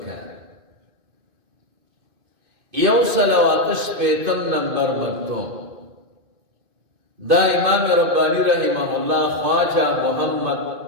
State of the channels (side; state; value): left; late; 2.5 ms